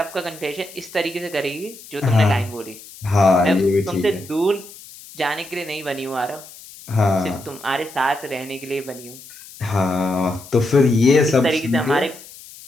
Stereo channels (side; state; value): left; noise; hiss, 18 dB below the sound